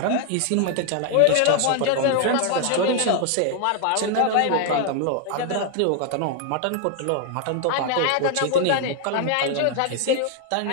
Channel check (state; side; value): different; both; correlation 0.00